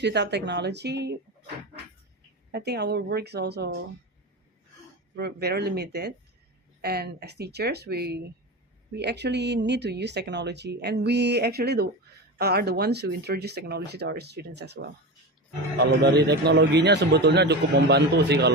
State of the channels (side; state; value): both; normal; correlation 0.23